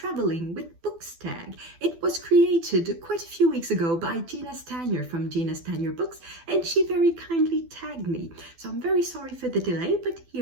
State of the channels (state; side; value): late; left; 12 ms